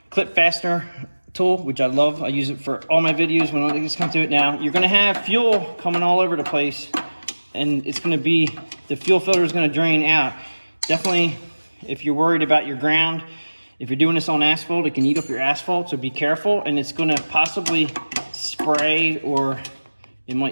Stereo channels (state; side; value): inverted; both; correlation -1.00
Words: clip fastener tool, which I love. I use it for all my videos when I just come to it. Now, you're gonna have fuel coming all over the place, and it's gonna be, the fuel filter is gonna drain out. Definitely, if you're worried about your ground, if you're doing this on asphalt, it can eat up your asphalt, so be careful, and it's gonna possibly spray, or it